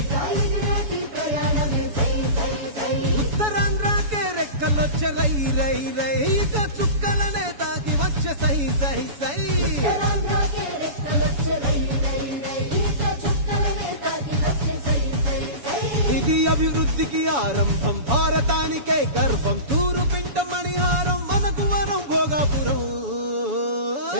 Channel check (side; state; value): left; late; 7.1 ms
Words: ఉత్తరాంధ్రకే రెక్కలొచ్చే రై రై రై ఇక చుక్కలనే తాకి వచ్చే సై సై సై ఇది అభివృద్ధికి ఆరంభం భారతానికే గర్వం తూరు పింట మణిహారం మనకు వరం భోగాపురం